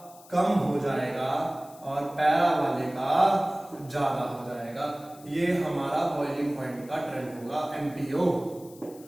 कम हो जाएगा और पैरा वाले का ज्यादा हो जाएगा। ये हमारा बॉइलिंग पॉइंट का ट्रेंड होगा MPO,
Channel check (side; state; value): left; noise; hiss, 23 dB below the sound